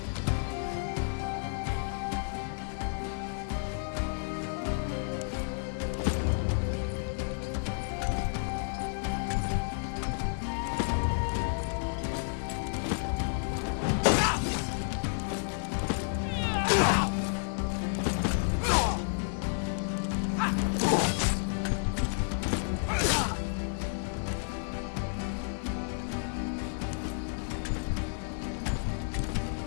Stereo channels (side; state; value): right; silent; digital silence